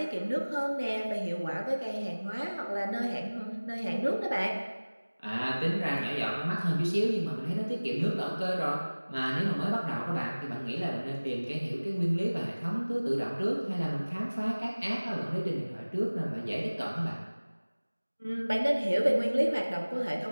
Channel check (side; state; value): both; inverted; correlation -1.00